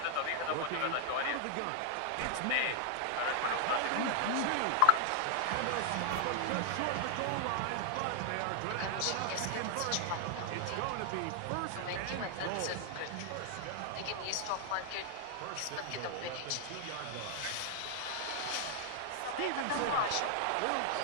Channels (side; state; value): both; different; correlation 0.00